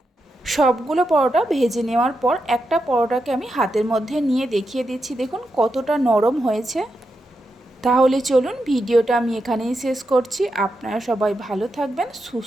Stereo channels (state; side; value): normal; both; correlation 0.86